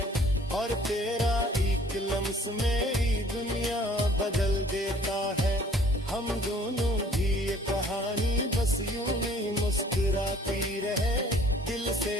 और तेरा एक लम्स मेरी दुनिया बदल देता है। हम दोनों की ये कहानी बस यूं ही मुस्कुराती रहे, दिल से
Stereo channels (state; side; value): normal; both; correlation 0.56